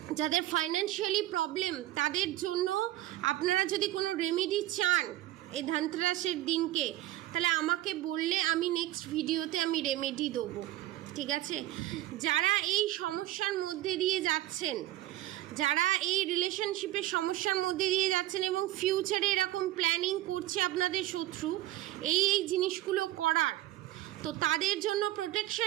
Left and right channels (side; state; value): left; quieter; 15.4 dB